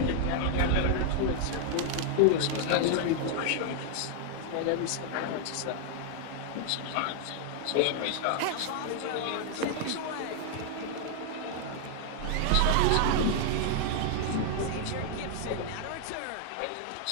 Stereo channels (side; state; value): both; different; correlation 0.00